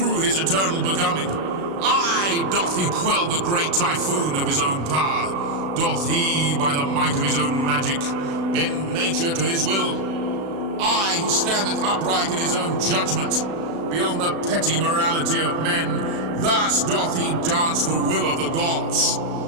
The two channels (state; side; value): late; left; 36 ms